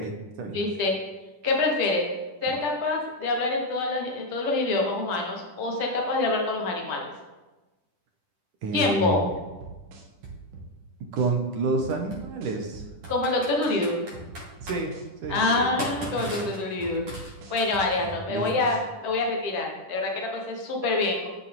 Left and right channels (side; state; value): left; late; 10 ms